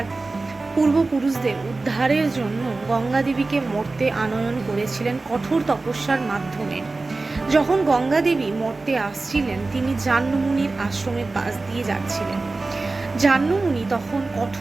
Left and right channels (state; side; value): quieter; left; 3.5 dB